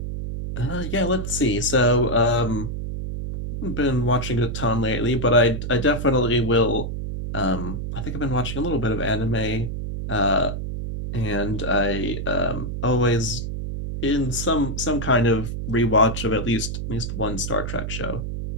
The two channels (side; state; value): right; noise; hum, 4 dB below the sound